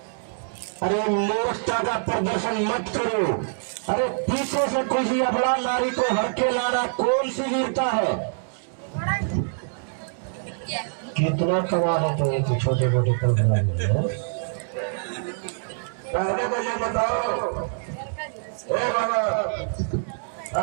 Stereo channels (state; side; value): silent; left; digital silence